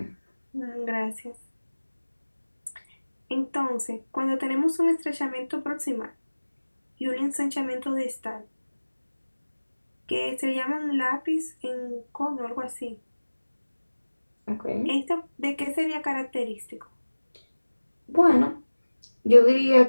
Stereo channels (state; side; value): inverted; both; correlation -1.00